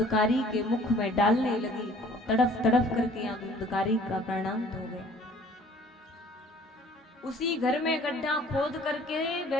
के मुख में डालने लगी। तड़फ तड़फ करके यहाँ धुंधकारी का प्राणांत हो गया। उसी घर में गड्ढा खोद करके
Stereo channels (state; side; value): normal; both; correlation 0.54